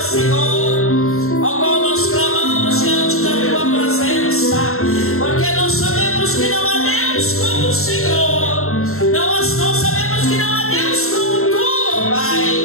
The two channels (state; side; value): late; right; 0.62 ms